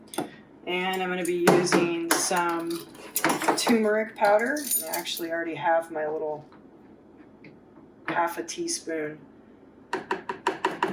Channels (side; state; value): both; identical; correlation 1.00